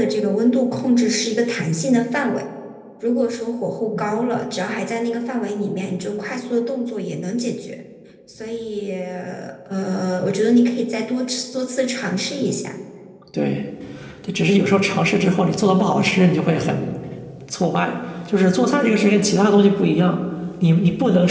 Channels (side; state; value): both; identical; correlation 1.00